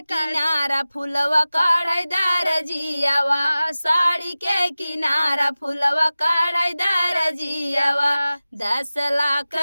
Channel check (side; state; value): both; inverted; correlation -0.96